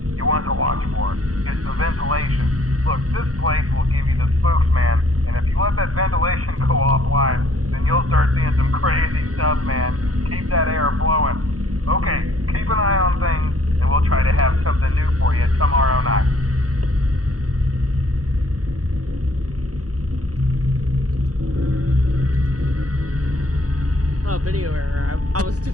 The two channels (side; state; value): left; late; 0.67 ms